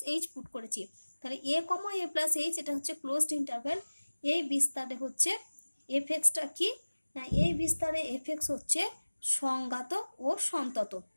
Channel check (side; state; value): both; inverted; correlation -1.00